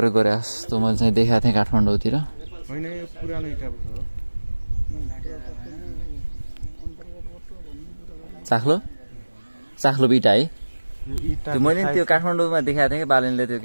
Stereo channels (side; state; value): both; inverted; correlation -1.00